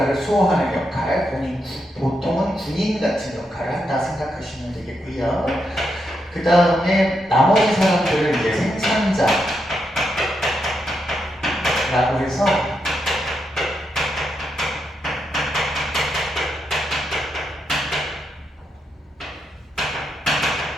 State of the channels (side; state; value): both; normal; correlation 0.82